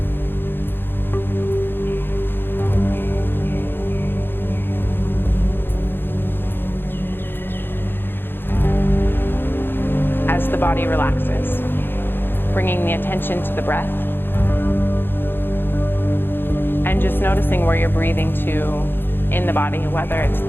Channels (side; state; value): right; late; 0.10 ms